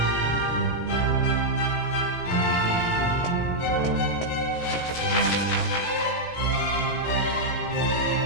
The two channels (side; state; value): right; late; 17 ms